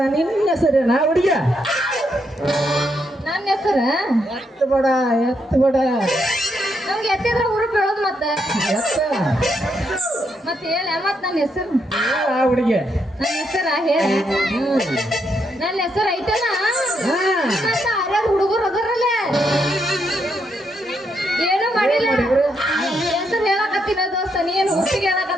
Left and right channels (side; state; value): both; normal; correlation 0.78